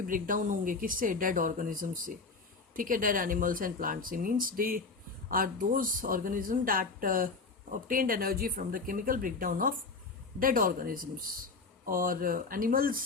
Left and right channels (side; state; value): right; quieter; 4.1 dB